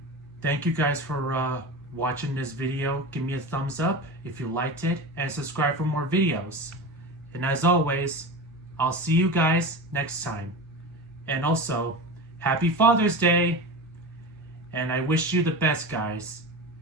thank you guys for watching this video. Give me a thumbs up if you liked it, and subscribe for more videos. And as always, I'll see you guys next time. And also, Happy Father's Day! And I wish you the best, guys.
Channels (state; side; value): normal; both; correlation 0.27